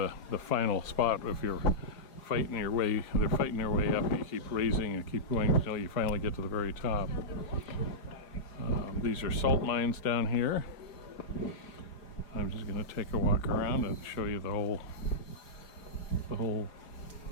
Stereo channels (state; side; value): late; right; 4.9 ms